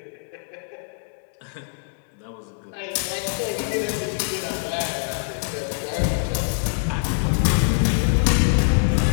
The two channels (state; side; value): silent; right; digital silence